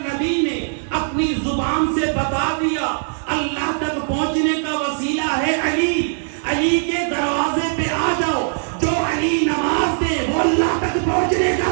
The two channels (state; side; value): silent; left; 66 dB below the other